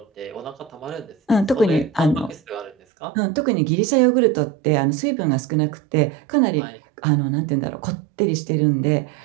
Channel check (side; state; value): left; drops out; at 2.8 s